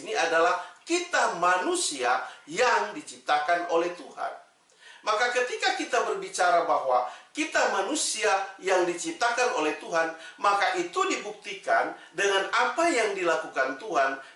adalah kita manusia yang diciptakan oleh Tuhan. Maka ketika kita berbicara bahwa kita manusia yang diciptakan oleh Tuhan, maka itu dibuktikan dengan apa yang dilakukan Tuhan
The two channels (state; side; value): identical; both; correlation 1.00